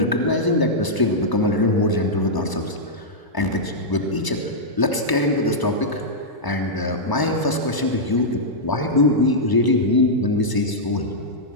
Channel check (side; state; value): right; late; 1.0 ms